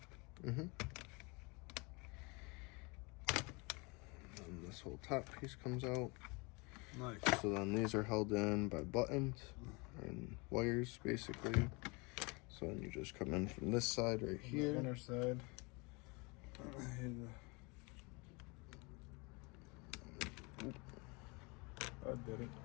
And this whole top piece comes out. Nice. So then these are held in by buttons and wires, basically. So then you just come in from this side right here. The inner side. I did it.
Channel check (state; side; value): quieter; right; 28.5 dB